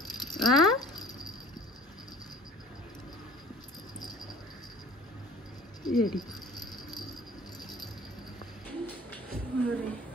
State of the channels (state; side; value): normal; both; correlation 0.49